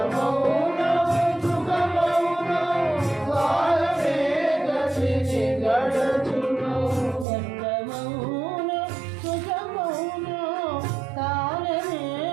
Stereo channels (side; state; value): left; drops out; at 7.2 s